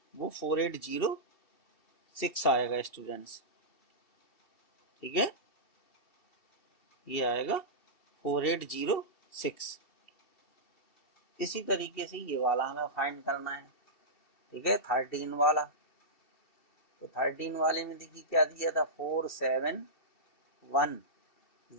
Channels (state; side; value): late; right; 2.7 ms